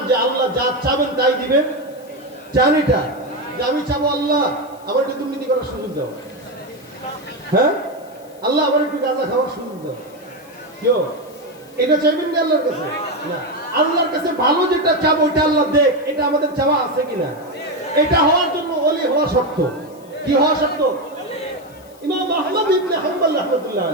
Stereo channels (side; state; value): left; noise; hiss, 27 dB below the sound